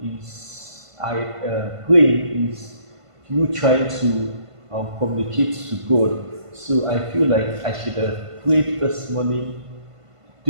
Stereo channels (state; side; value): late; left; 1.5 ms